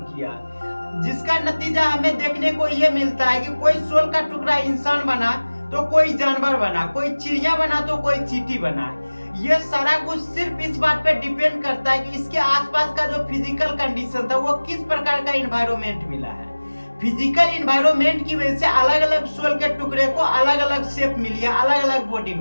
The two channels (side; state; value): both; inverted; correlation -1.00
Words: किया, जिसका नतीजा हमें देखने को ये मिलता है कि कोई सोल का टुकड़ा इंसान बना तो कोई जानवर बना, कोई चिड़िया बना तो कोई चींटी बना। ये सारा कुछ सिर्फ इस बात पे डिपेंड करता है कि इसके आसपास का जो फिजिकल कंडीशन था वो किस प्रकार का एनवायरनमेंट मिला है। फिजिकल एनवायरनमेंट की वजह से अलग अलग सोल के टुकड़े को अलग अलग शेप मिली है, अलग अलग बॉडी